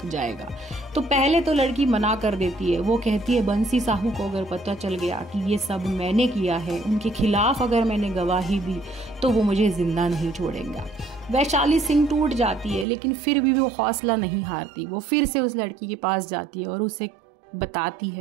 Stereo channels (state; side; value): drops out; left; at 12.9 s